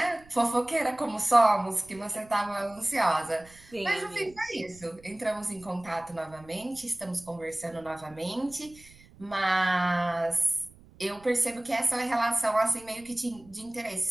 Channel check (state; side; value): noise; right; rumble, 24 dB below the sound